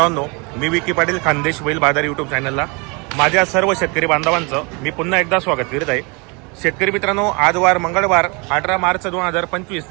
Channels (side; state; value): left; quieter; 30.4 dB